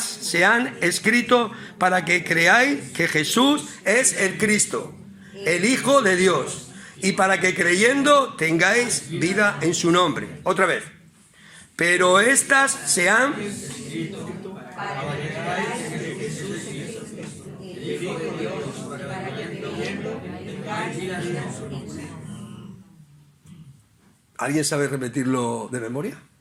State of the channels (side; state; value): both; identical; correlation 1.00